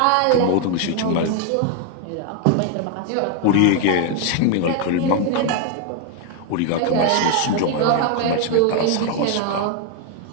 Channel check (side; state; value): both; different; correlation 0.01